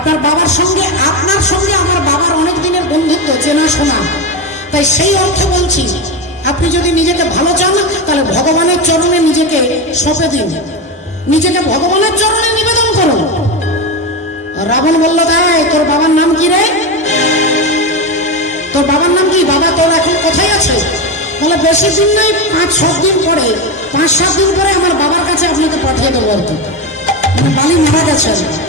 বাবার সঙ্গে, আপনার সঙ্গে আমার বাবার অনেক দিনের বন্ধুত্ব, চেনা শোনা। তাই সেই অর্থে বলছি, আপনি যদি নিজেকে ভালো চান তাহলে ভগবানের চরণে নিজেকে সঁপে দিন, নিজেকে ভগবানের চরণে নিবেদন করুন। রাবণ বলল, তাই তোর বাবার নাম কি রে? তোর বাবার নাম কি? বাবা তোর এখন কোথায় আছে? বলে, বেশি দিন নেই, 5-7 দিন পরে, 5-7 দিন পরে আমার বাবার কাছে আপনাকে পাঠিয়ে দেবো আর কি। বালি মারা গেছে,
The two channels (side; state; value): both; normal; correlation 0.16